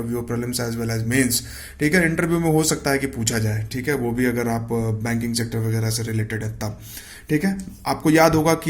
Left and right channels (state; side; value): identical; both; correlation 1.00